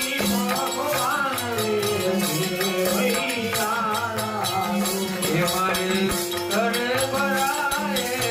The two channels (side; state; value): both; identical; correlation 1.00